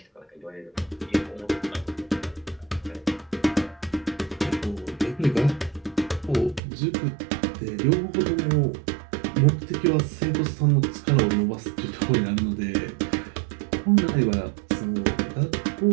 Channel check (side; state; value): left; drops out; at 6.6 s